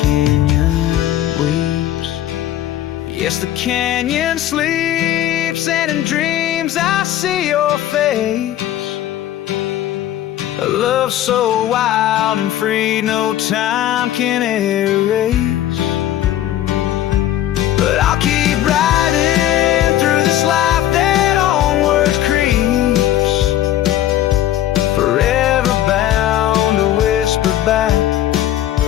weeps. Yes, the canyon sleeps, and in dreams I see your face. A love so wild and free, no time can erase. But I'll keep riding through this life that onward creeps, forever bound to whisper back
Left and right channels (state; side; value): quieter; right; 12.5 dB